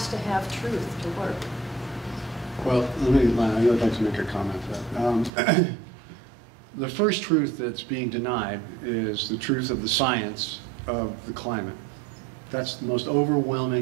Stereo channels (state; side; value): drops out; left; at 5.3 s